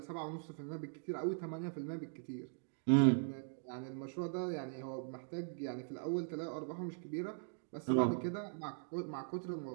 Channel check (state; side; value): silent; left; digital silence